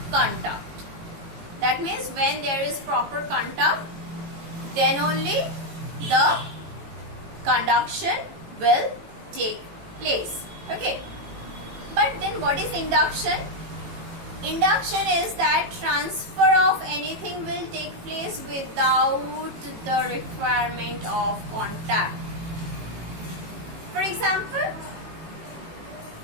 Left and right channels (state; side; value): late; left; 18 ms